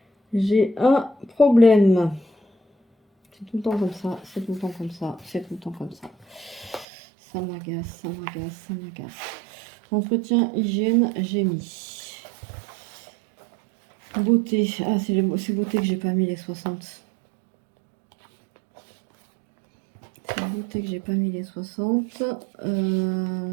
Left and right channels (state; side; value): drops out; left; at 6.9 s